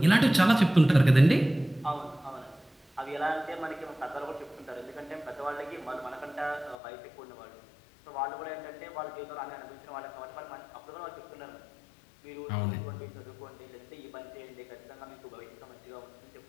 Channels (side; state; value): right; drops out; at 6.8 s